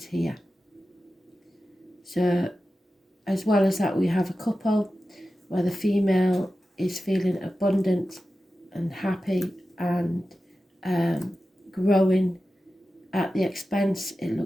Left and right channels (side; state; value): both; normal; correlation 0.93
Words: here. So, as well as that, we have a couple where the female is feeling abundant and happy and growing at the expense, it